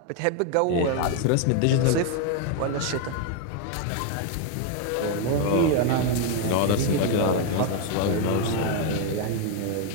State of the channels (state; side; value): different; both; correlation 0.01